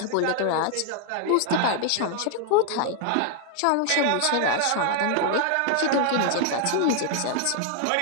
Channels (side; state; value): both; different; correlation 0.00